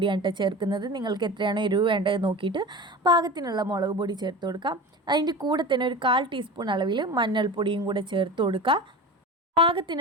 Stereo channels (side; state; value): both; normal; correlation 0.32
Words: കേട്ടോ ചേർക്കുന്നത്. നിങ്ങൾക്ക് എത്രയാണോ എരിവ് വേണ്ടത് നോക്കിയിട്ട് പാകത്തിനുള്ള മുളക് പൊടി ചേർത്ത് കൊടുക്കാം. അതിൻ്റെ കൂടെ തന്നെ ഒരു 1/4 ടീസ്പൂൺ അളവിൽ മഞ്ഞൾപ്പൊടിയും കൂടെ ചേർത്ത് കൊടുക്കുക.